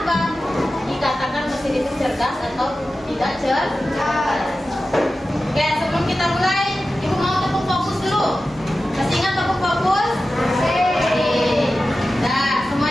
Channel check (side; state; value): both; normal; correlation 0.94